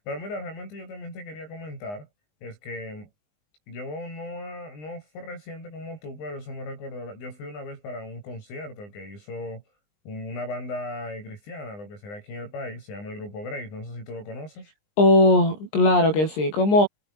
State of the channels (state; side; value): late; right; 20 ms